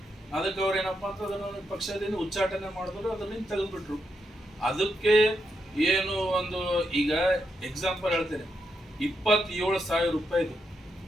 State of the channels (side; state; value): both; normal; correlation 0.82